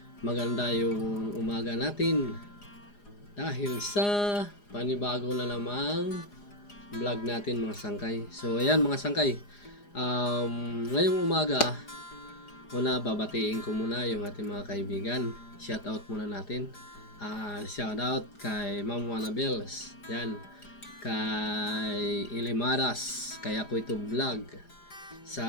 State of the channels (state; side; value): late; right; 4.9 ms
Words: maganda yung umaga natin dahil sa panibago na namang vlog natin mga sangkay. So ayan mga sangkay, ngayong umaga muna babatiin ko muna yung ating mga kaibigan. Shout out muna natin. Shout out kay Ma'am Wanabels. Yan. Kay Ilimaras, kay ako ito vlog